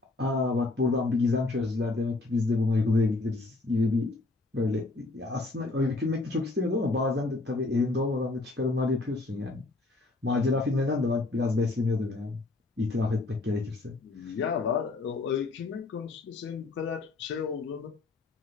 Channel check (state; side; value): quieter; right; 3.3 dB